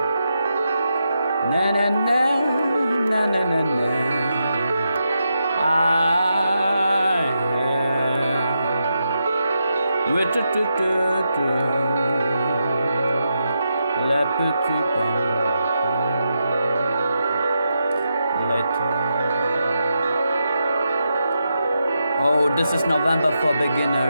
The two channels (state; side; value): inverted; both; correlation -0.85